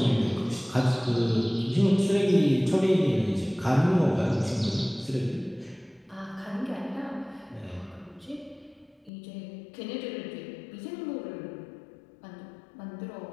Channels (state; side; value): drops out; right; at 9.1 s